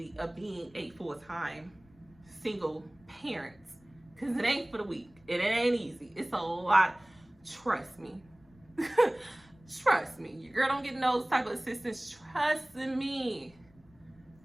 of being a full-time single parent, because it ain't for the weak. It ain't easy. It's a lot. Trust me. Trust me. Your girl don't get those type of assistance. Trust me.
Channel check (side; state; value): left; noise; rumble, 28 dB below the sound